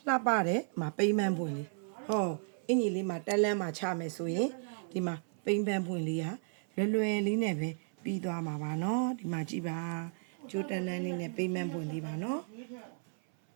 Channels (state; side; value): silent; left; 55 dB below the other